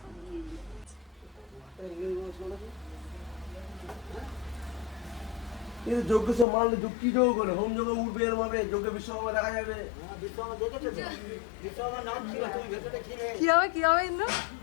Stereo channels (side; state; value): right; drops out; at 6.5 s